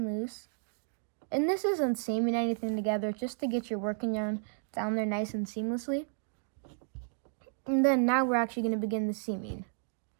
loose. And this isn't seaming anything together, just to get your working yarn down there nice and seamlessly. And then now we're actually going to begin the seaming.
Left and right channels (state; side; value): silent; left; digital silence